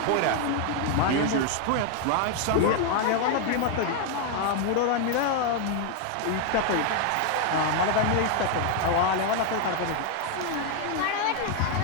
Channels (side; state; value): both; different; correlation 0.01